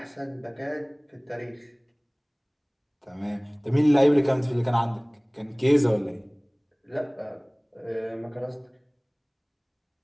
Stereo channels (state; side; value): identical; both; correlation 1.00